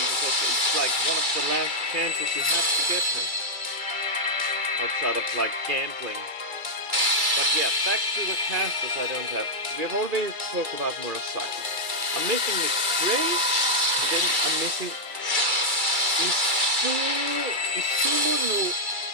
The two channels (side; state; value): left; late; 2.3 ms